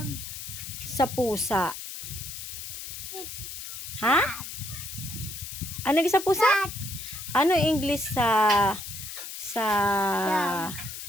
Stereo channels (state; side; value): noise; left; hiss, 9 dB below the sound